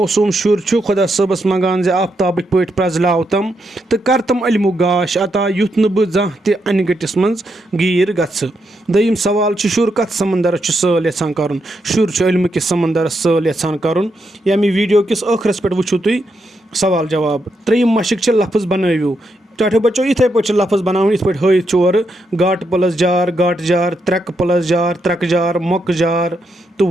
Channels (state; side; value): normal; both; correlation 0.81